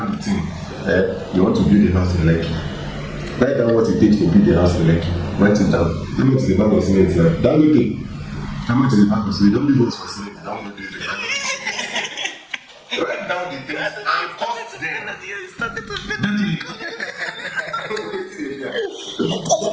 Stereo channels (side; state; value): both; identical; correlation 1.00